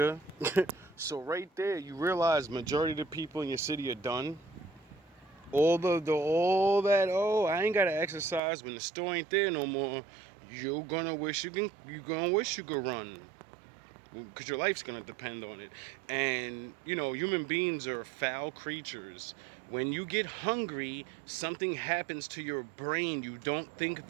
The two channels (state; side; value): drops out; left; at 8.4 s